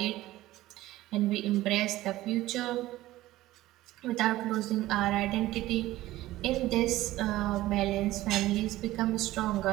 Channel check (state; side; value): quieter; left; 16.4 dB